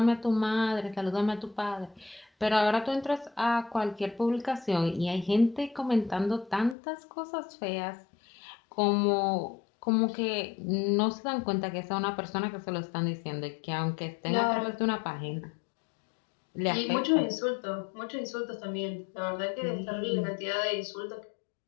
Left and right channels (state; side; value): drops out; right; at 6.8 s